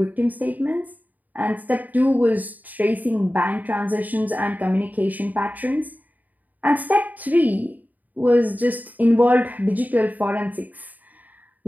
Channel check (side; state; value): left; late; 0.081 ms